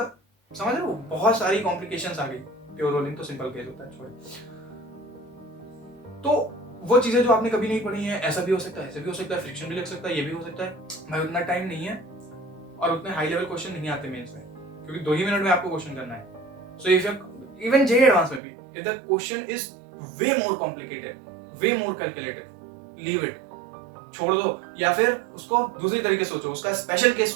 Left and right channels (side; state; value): left; drops out; at 18.4 s